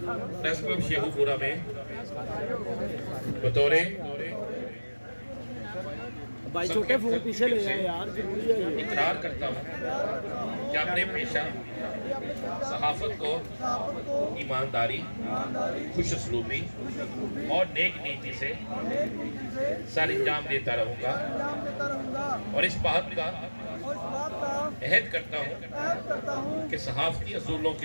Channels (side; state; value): both; inverted; correlation -1.00